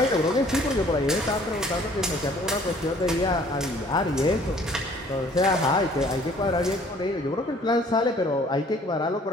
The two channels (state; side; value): normal; both; correlation 0.56